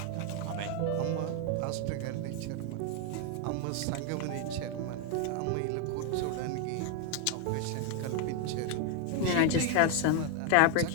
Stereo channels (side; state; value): both; different; correlation 0.01